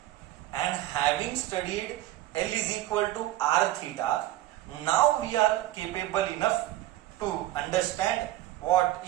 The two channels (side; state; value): left; quieter; 15.2 dB